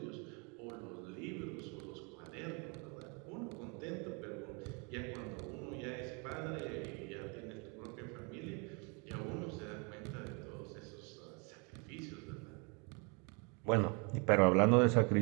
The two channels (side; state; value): left; quieter; 33.1 dB